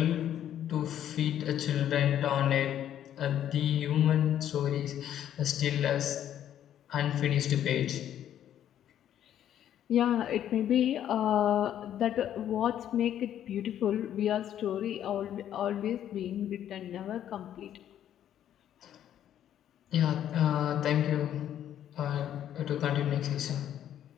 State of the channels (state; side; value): quieter; right; 10.7 dB